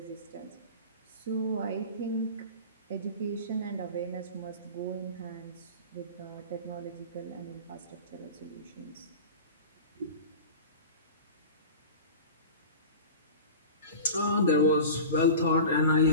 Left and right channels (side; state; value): both; inverted; correlation -0.34